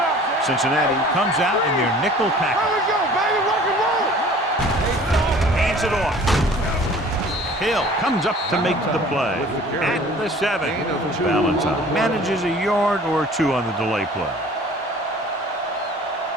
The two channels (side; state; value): both; normal; correlation 0.48